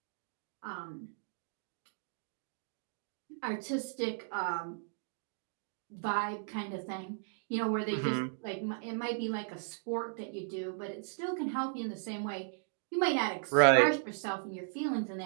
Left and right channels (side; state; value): left; silent; digital silence